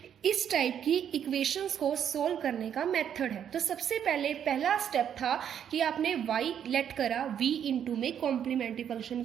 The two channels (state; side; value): quieter; left; 9.0 dB